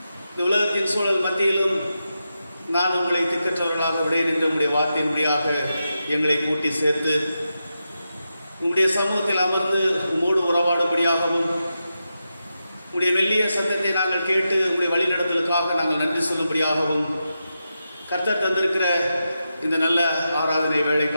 இந்த உலகத்தின் சூழல் மத்தியிலும் நான் உங்களை திக்கற்றவர்களாக விடேன் என்ற உம்முடைய வார்த்தையின் வழியாக எங்களை கூட்டி சேர்த்து உம்முடைய சமூகத்தில் அமர்ந்து உம்மோடு உறவாடும்படியாகவும் உம்முடைய மெல்லிய சத்தத்தை நாங்கள் கேட்டு உம்முடைய வழிநடத்தலுக்காக நாங்கள் நன்றி சொல்லும்படியாகவும் கர்த்தர் தந்திருக்கிற இந்த நல்ல ஆராதனை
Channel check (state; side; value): inverted; both; correlation -0.88